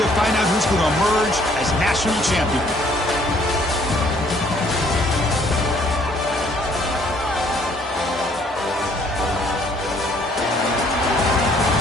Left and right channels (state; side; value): normal; both; correlation 0.62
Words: find out who's going to emerge as national champion.